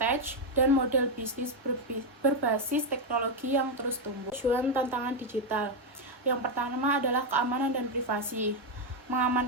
dan model bisnis berbasis teknologi yang terus tumbuh. Tujuan tantangan digital. Yang pertama adalah keamanan dan privasi.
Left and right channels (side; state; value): both; normal; correlation 0.04